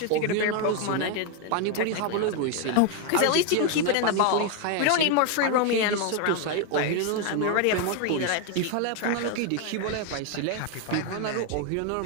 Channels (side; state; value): both; different; correlation 0.01